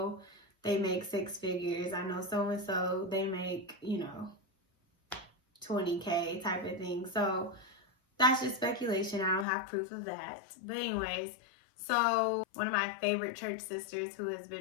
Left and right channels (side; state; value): right; drops out; at 9.5 s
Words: they make 6 figures. I know so and so, they make 20K, type of thing. So that's just speculation. I don't have proof of that. But anyways, so one of my favorite church sisters, who has